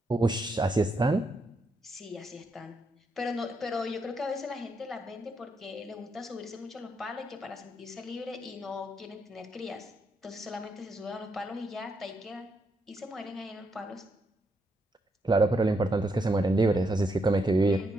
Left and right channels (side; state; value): both; normal; correlation 0.79